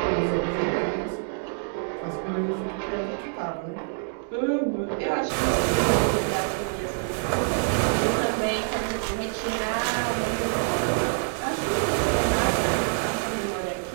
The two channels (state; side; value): silent; left; digital silence